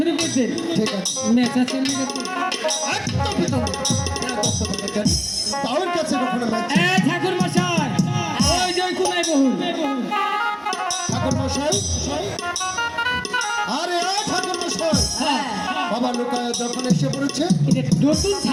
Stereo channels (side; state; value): both; identical; correlation 1.00